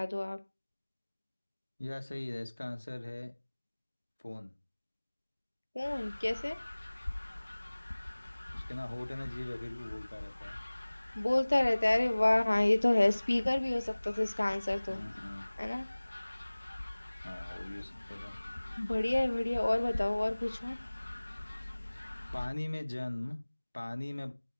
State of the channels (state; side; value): inverted; both; correlation -1.00